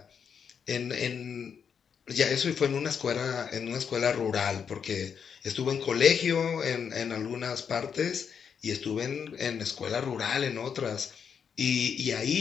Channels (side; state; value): right; quieter; 7.1 dB